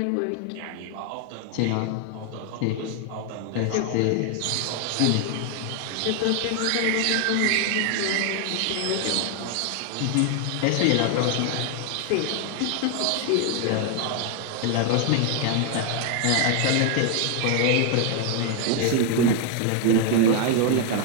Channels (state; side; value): different; both; correlation 0.00